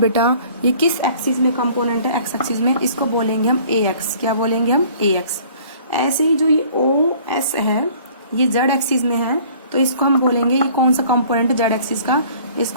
ये किस एक्सिस में कंपोनेंट है, एक्स एक्सिस में, इसको बोलेंगे हम ए एक्स। क्या बोलेंगे हम, ए एक्स। ऐसे ही जो ये ओ एस है ये जेड एक्सिस में है, तो इसको हम बोलेंगे, ये कौन सा कंपोनेंट है जेड एक्सिस का,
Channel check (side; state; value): both; inverted; correlation -0.53